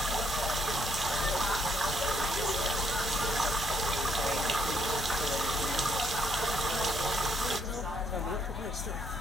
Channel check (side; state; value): both; normal; correlation 0.71